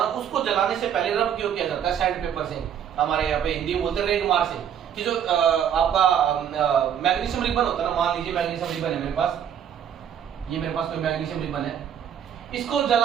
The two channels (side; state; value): left; quieter; 9.0 dB